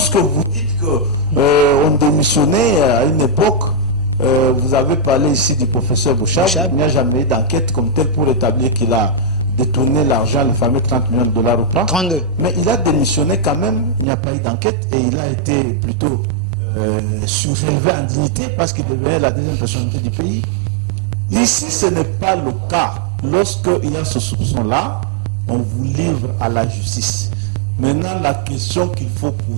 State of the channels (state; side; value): drops out; left; at 14.1 s